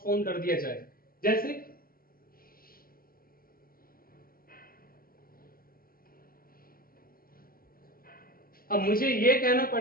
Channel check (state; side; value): late; right; 0.42 ms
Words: कर दिया जाए, जैसे अब मुझे ये कहना